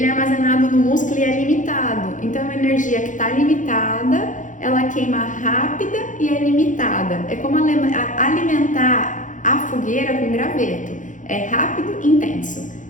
é armazenado no músculo e é limitado. Então, a energia que está limitada, ela queima rápida e é limitada. É como alimentar a fogueira com graveto. É rápido e intenso.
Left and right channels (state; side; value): late; right; 0.37 ms